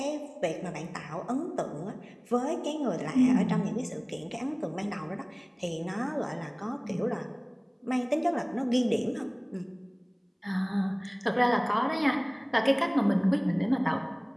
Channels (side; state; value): both; identical; correlation 1.00